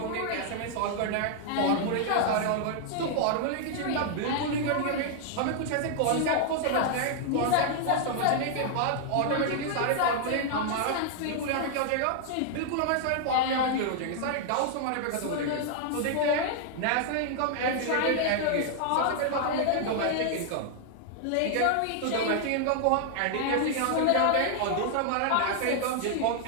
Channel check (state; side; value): different; both; correlation 0.00